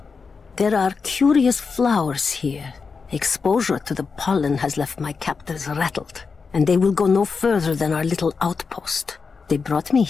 There are curious flowers here. Exposure to the pollen has left my captors rattled, and they will go no further than our little outpost. They brought me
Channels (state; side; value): quieter; right; 5.1 dB